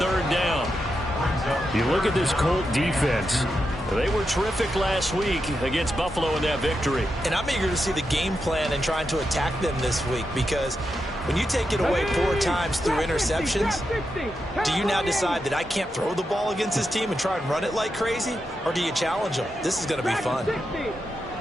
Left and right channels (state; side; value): normal; both; correlation 0.86